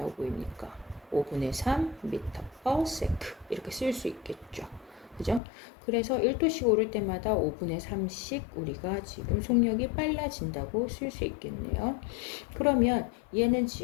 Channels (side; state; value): right; drops out; at 5.4 s